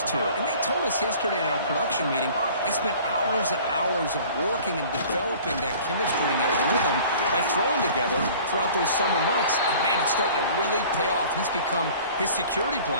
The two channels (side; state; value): both; inverted; correlation -0.47